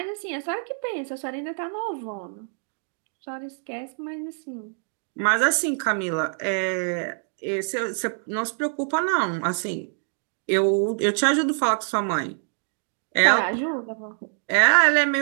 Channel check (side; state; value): left; silent; 62 dB below the other